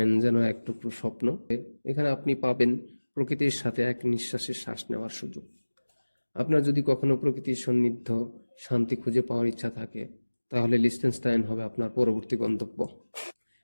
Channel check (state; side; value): inverted; both; correlation -1.00